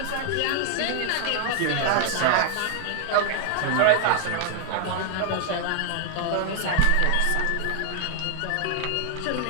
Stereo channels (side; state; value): both; different; correlation 0.00